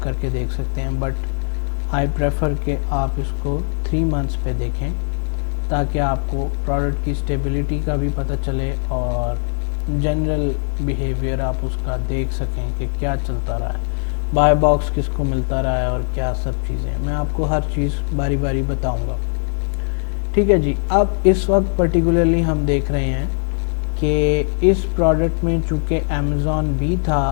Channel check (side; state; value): right; silent; 66 dB below the other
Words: کر کے دیکھ سکتے ہیں. بٹ آئی پریفر کہ آپ اس کو 3 منتھس پہ دیکھیں تاکہ آپ کو پروڈکٹ کی اسٹیبلٹی کا بھی پتہ چلے اور جنرل بیہیویئر آپ اس کا دیکھ سکیں کہ کیا چلتا رہا ہے، بائی باکس کس کو ملتا رہا ہے اور کیا سب چیزیں. میں آپ کو ہر چیز باری باری بتاؤں گا. ٹھیک ہے جی. اب اس وقت پرٹیکولرلی ہم دیکھ رہے ہیں کہ اس پروڈکٹ میں چونکہ امیزون بھی